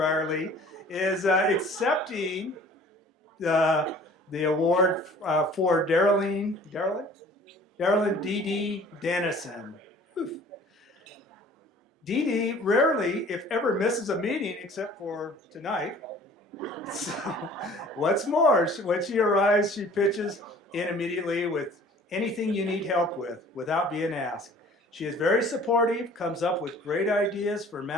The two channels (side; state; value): both; normal; correlation 0.50